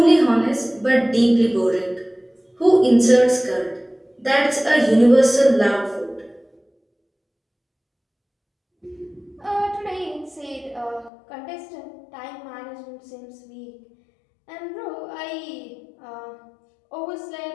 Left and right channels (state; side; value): drops out; right; at 11.1 s